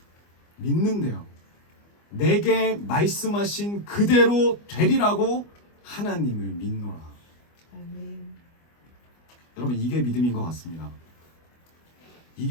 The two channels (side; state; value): right; late; 25 ms